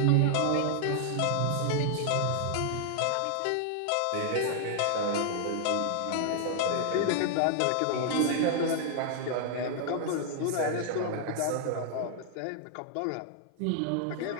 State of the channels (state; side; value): different; both; correlation 0.00